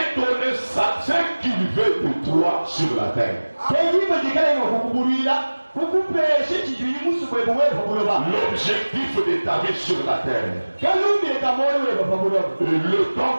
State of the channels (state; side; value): inverted; both; correlation -1.00